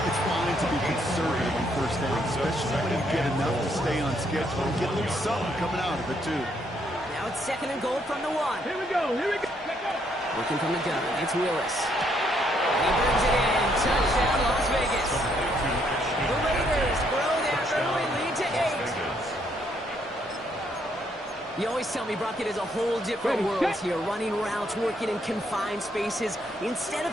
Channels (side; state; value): both; normal; correlation 0.72